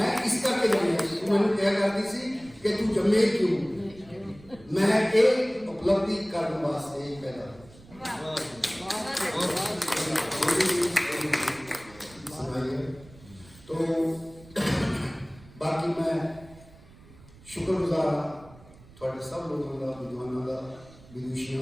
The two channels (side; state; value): right; noise; rumble, 22 dB below the sound